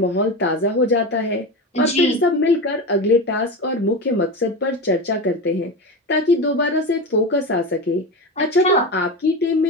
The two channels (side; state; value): both; normal; correlation 0.22